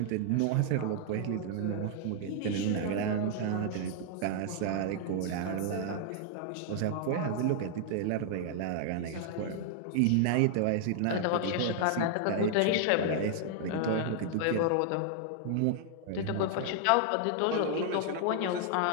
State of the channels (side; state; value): both; different; correlation 0.00